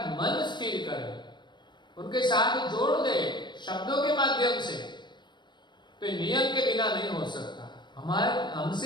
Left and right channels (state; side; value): late; right; 0.22 ms